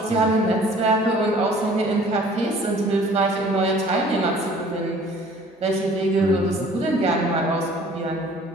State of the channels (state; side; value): normal; both; correlation 0.52